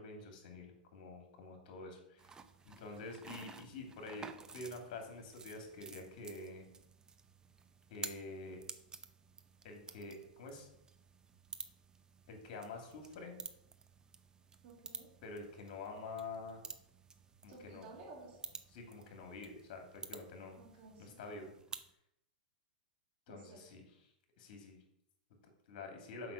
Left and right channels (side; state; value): both; normal; correlation -0.10